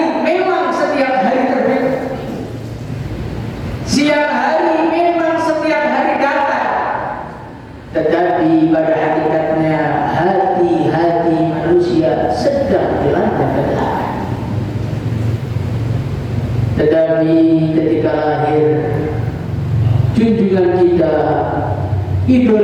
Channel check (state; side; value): identical; both; correlation 1.00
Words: memang setiap hari terbit, siang hari memang setiap hari datang, tetapi pada hakikatnya hati-hati manusia sedang dilanda kegelapan. Tetapi ketika lahir junjungan kita,